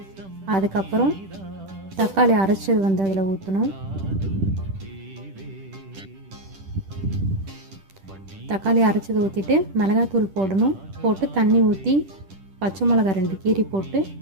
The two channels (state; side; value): late; left; 10 ms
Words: அதுக்கப்புறம் தக்காளி அரைச்சது வந்து அதில் ஊற்றணும். தக்காளி அரைச்சது ஊற்றிட்டு மிளகாத்தூள் போடணும். போட்டு தண்ணி ஊற்றி பச்சை மிளகா 2 கீரி போட்டு